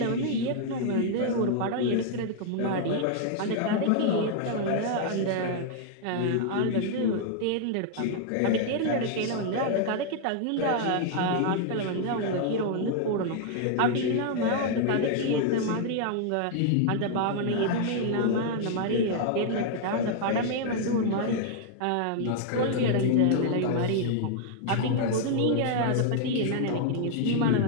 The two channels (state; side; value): different; both; correlation -0.01